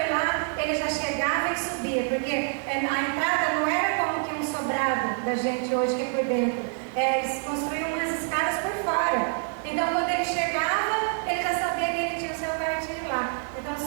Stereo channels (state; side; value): quieter; left; 38.5 dB